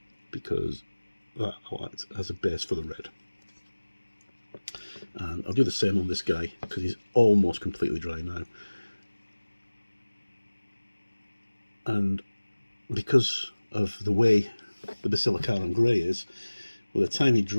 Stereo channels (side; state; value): both; inverted; correlation -1.00